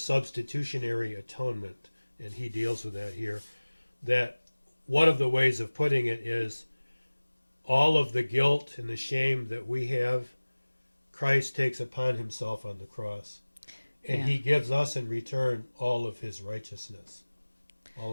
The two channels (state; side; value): inverted; both; correlation -1.00